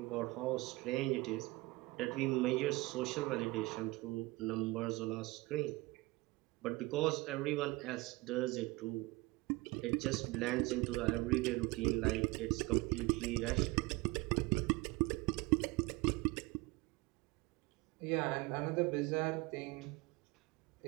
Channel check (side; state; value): left; quieter; 22.5 dB